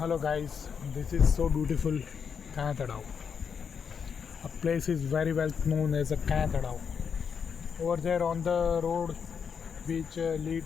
guys, this is so beautiful Kanatadao. A place is very well known as a Kanatadao. Over there on the road which lead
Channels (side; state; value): right; quieter; 6.7 dB